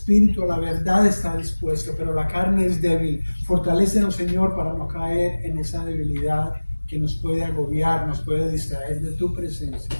a la verdad está dispuesto, pero la carne es débil. Fortalécenos, Señor, para no caer en esa debilidad que nos puede agobiar, nos puede distraer de tu presencia.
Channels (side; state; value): both; inverted; correlation -1.00